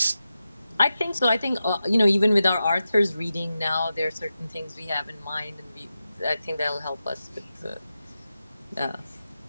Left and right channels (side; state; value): both; inverted; correlation -0.91